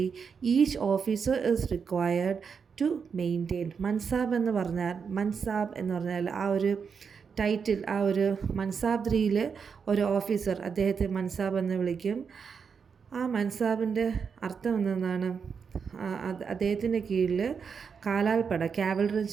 each officer is required to maintain. Mansab എന്ന് പറഞ്ഞാൽ ആ ഒരു ടൈറ്റിൽ, ആ ഒരു മൻസാബ്ദ്രിയിൽ ഒരു ഓഫീസർ, അദ്ദേഹത്തെ മൻസാബ് എന്ന് വിളിക്കും. ആ മൻസാബിൻ്റെ അർത്ഥം എന്തെന്നാണ്, അദ്ദേഹത്തിൻ്റെ കീഴിൽ കാലാൾപ്പട, കാവലറി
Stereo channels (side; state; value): left; quieter; 6.2 dB